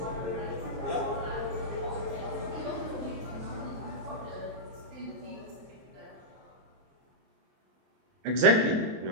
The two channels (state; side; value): late; left; 23 ms